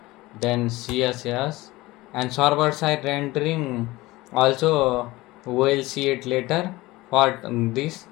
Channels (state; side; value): quieter; right; 19.7 dB